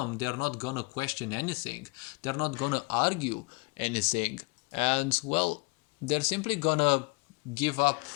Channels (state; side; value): quieter; right; 27.9 dB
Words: they're not going to question anything. They're not going to argue anything. And, they're simply going to give up